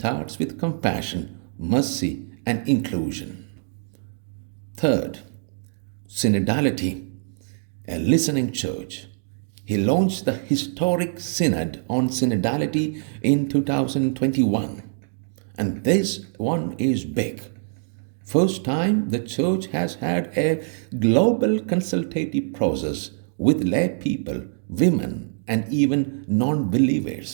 with compassion, mercy, and inclusion. Third, synodality, a listening church. He launched the historic Synod on Synodality in 2021. And this one is big. First time the church has had a global consultative process with lay people, women, and even non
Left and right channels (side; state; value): left; silent; digital silence